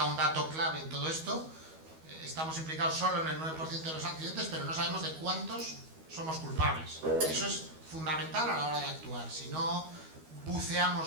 un dato clave en todo esto. Estamos implicados solo en el 9% de los accidentes, pero no sabemos de cuántos somos culpables. Eso es fundamental a la hora de actuar. Si no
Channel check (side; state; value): left; late; 12 ms